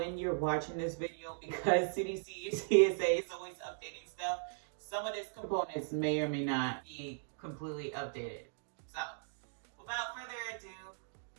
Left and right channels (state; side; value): silent; left; digital silence